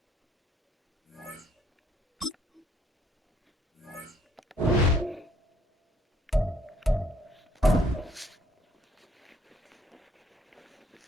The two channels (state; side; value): normal; both; correlation 0.65